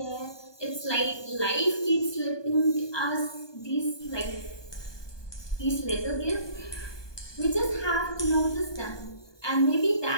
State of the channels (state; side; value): late; right; 1.2 ms